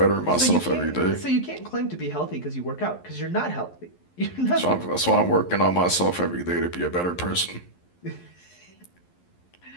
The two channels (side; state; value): right; late; 11 ms